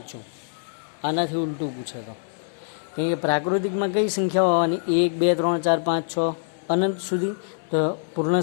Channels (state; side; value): silent; right; digital silence